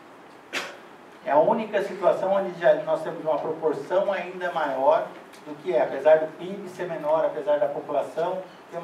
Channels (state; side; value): identical; both; correlation 1.00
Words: É a única situação onde nós temos uma proporção ainda maior do que apesar do PIB ser menor, apesar da população ter